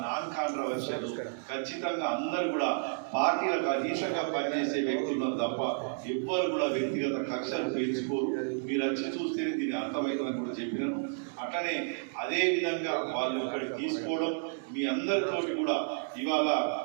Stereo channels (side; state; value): left; silent; digital silence